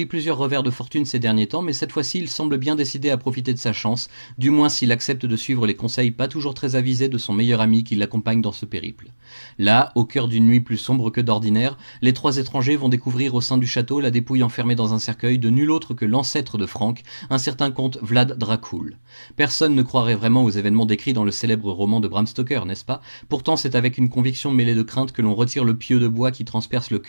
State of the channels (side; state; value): both; inverted; correlation -1.00